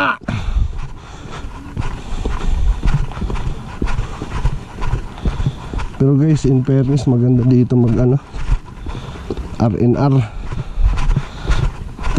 Pero guys, in fairness maganda dito mag ano, R&R.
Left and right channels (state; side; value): identical; both; correlation 1.00